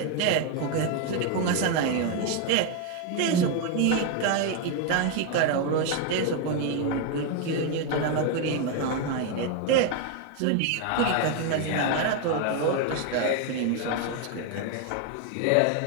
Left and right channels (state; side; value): different; both; correlation 0.01